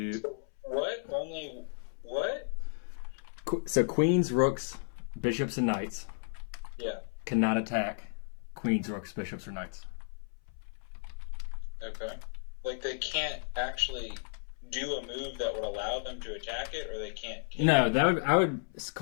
What? Only what? so queens, rooks, bishops, and knights Yeah. cannot attack queens, rooks, bishops, or knights. Okay. Like they can't actually do a move that would allow them to attack it, or they can't. No, that would I would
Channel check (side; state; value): right; silent; 56 dB below the other